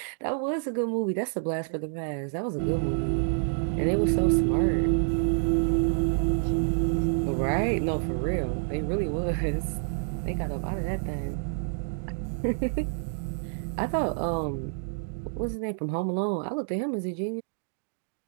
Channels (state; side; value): silent; left; digital silence